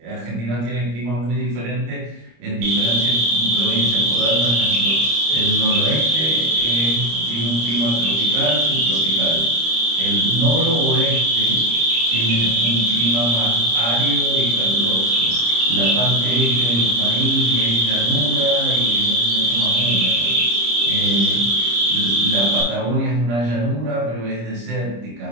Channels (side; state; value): left; late; 25 ms